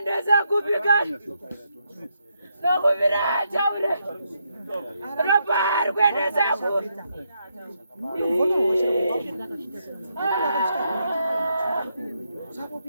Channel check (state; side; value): inverted; both; correlation -0.79